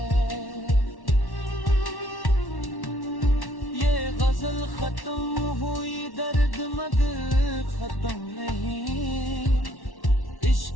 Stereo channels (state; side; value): late; right; 1.1 ms